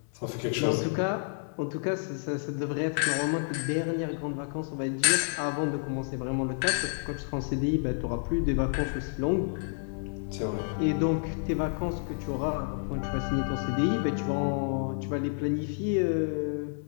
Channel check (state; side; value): silent; right; 58 dB below the other